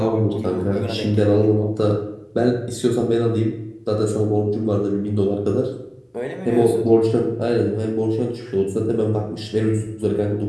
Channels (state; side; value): identical; both; correlation 1.00